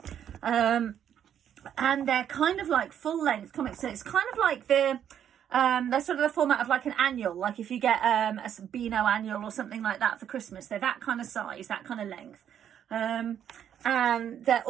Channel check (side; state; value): left; quieter; 9.4 dB